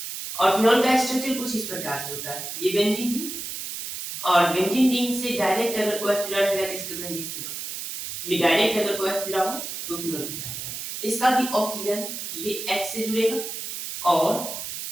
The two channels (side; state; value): right; noise; hiss, 7 dB below the sound